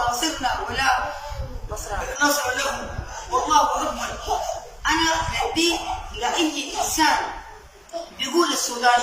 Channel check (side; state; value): both; identical; correlation 1.00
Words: ولا نصر له، والله اكبر. انا بدي لاي انسان بيقول